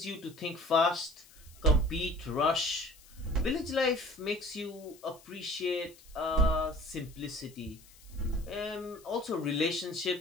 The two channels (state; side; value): noise; left; hiss, 24 dB below the sound